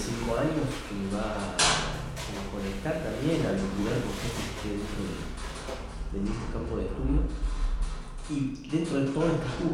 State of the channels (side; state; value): both; identical; correlation 1.00